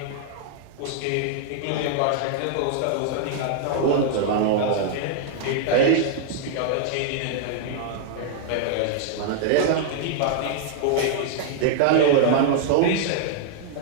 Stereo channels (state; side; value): different; both; correlation -0.01